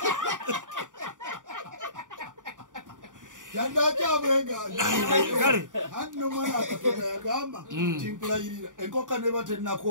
Yandacha abweganye. Kale. Hanno mwana akatoka yagamba timpulayirira. Enkoka neba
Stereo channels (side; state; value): left; late; 0.88 ms